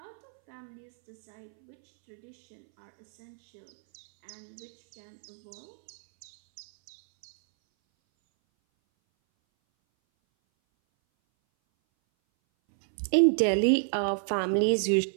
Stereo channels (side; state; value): left; silent; 58 dB below the other